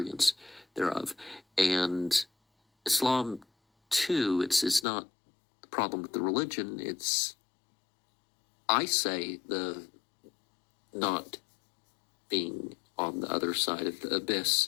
thereof. And Islam, too, it's not the problem with the religion. It's, I say, the not being on the other side of the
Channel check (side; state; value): right; drops out; at 4.9 s